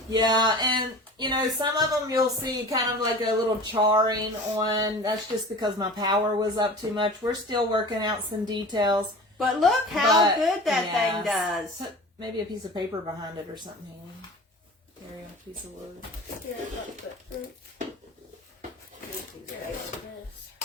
Yeah, and, you know, some of them you'll see kind of like a little charring on. That's just because my power was up too much. We're still working out some details. But look how good that thing does. Put maybe a piece of paper behind it or something. There, a piece of wood. Here,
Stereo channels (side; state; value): both; normal; correlation 0.38